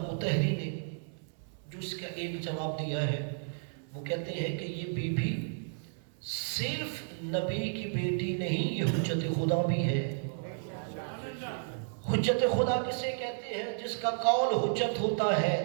مطہری نے جو اس کا ایک جواب دیا ہے وہ کہتے ہیں کہ یہ بیوی صرف نبی کی بیٹی نہیں, یہ حجت خدا بھی ہے. حجت خدا کسے کہتے ہیں؟ جس کا قول حجت ہوتا ہے,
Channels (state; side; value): silent; left; 56 dB below the other